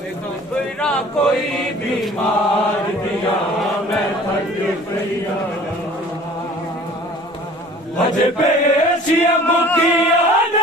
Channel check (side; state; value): both; normal; correlation 0.48